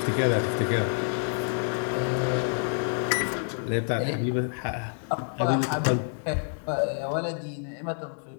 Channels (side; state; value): right; silent; digital silence